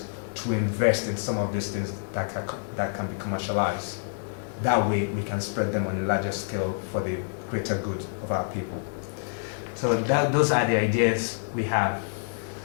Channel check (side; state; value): right; silent; 60 dB below the other